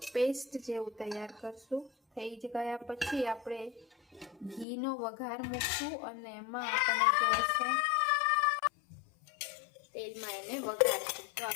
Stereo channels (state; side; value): drops out; right; at 4.7 s